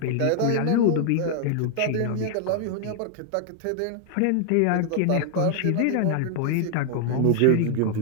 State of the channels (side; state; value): both; different; correlation 0.00